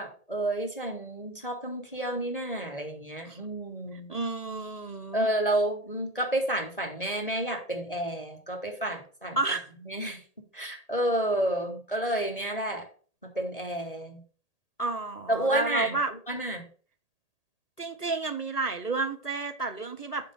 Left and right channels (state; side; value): late; right; 1.8 ms